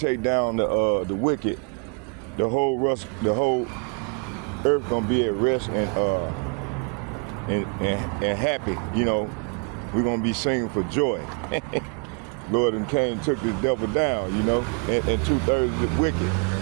down the wicked, the whole earth gonna be at rest and happy. You know, we're gonna be singing for joy. Lord and Cain took the devil down. You know, and 2/3 of the wicked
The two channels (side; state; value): left; quieter; 35.5 dB